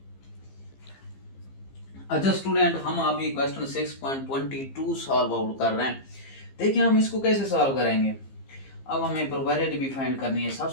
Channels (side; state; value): right; late; 15 ms